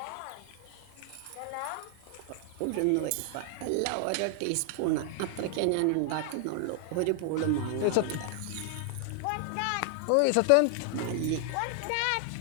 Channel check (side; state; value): both; different; correlation 0.00